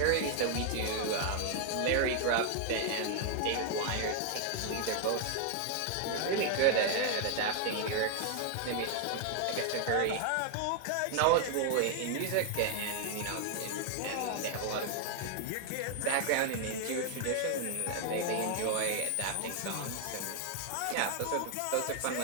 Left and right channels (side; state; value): both; different; correlation 0.00